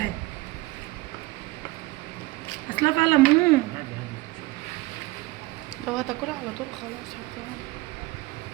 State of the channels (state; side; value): quieter; left; 20.6 dB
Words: اصلها فيها ليمون. لو هتاكلها على طول خلاص حطيها.